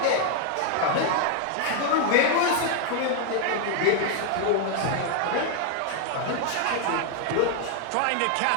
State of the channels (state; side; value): different; both; correlation 0.00